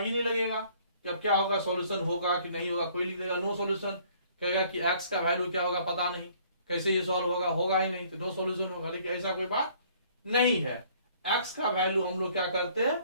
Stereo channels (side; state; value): both; inverted; correlation -0.59